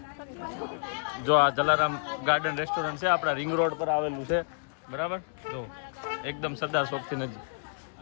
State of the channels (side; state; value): right; silent; digital silence